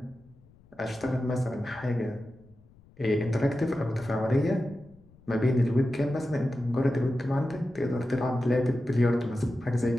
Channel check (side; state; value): left; noise; rumble, 27 dB below the sound